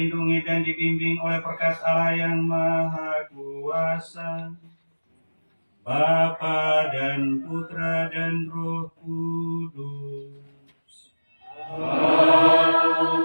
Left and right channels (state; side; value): inverted; both; correlation -1.00